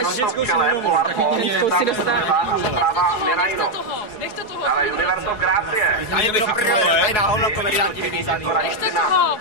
v čele, Polar Pond, a zprava Mirajno. Dále Universo Gracie. Tady na hovno komedianti vyvízaný.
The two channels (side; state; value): right; late; 4.6 ms